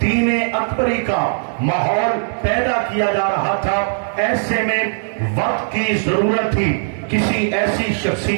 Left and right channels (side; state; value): left; silent; digital silence